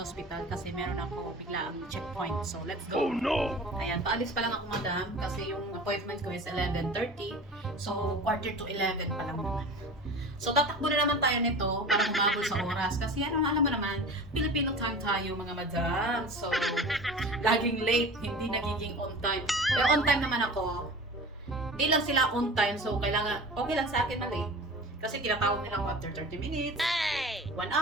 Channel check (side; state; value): both; normal; correlation 0.37